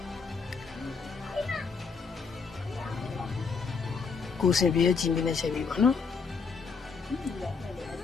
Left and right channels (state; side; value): quieter; right; 5.2 dB